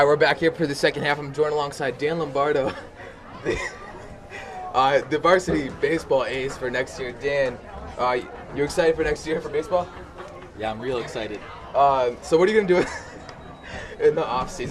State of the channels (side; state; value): both; identical; correlation 1.00